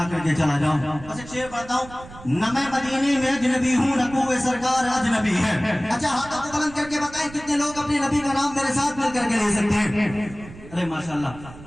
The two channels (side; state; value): right; noise; rumble, 17 dB below the sound